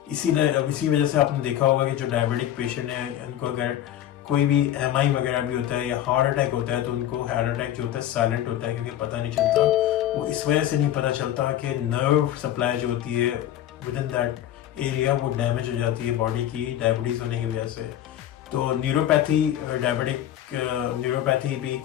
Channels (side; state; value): right; quieter; 11.9 dB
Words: इसी वजह से आपने देखा होगा कि जो डायबिटिक पेशेंट है उनको अगर कोई भी एमआई वगैरह भी होता है या हार्ट अटैक होता है तो उनको हार्ट अटैक जो होता है साइलेंट होता है, क्योंकि पता नहीं चलता। वो इस वजह से नहीं पता चलता कि नर्व सप्लाई जो होती है विद इन दैट एरिया वो डैमेज हो जाती है बॉडी की डायबिटीज होने की वजह से। तो न्यूरोपैथी, डायबिटिक न्यूरोपैथी भी